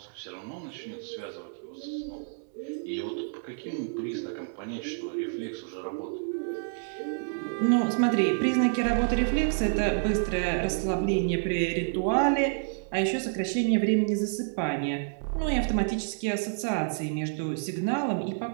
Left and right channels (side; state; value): left; silent; digital silence